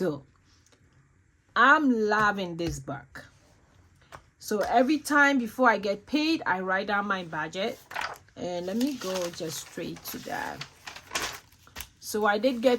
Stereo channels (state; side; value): identical; both; correlation 1.00